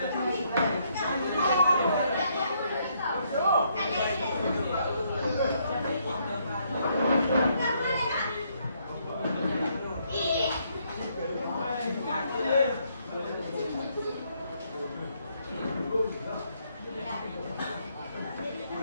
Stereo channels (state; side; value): inverted; both; correlation -0.72